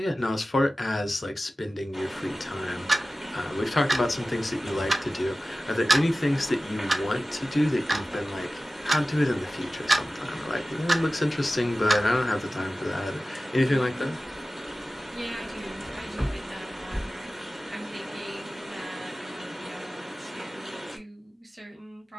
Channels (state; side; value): normal; both; correlation 0.96